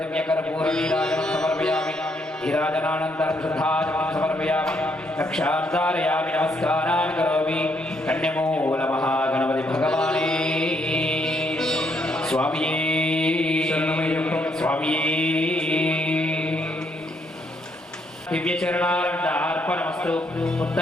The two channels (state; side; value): normal; both; correlation 0.73